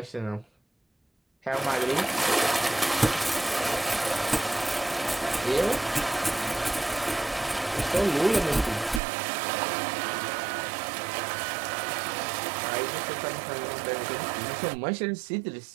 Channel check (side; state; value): left; drops out; at 9.0 s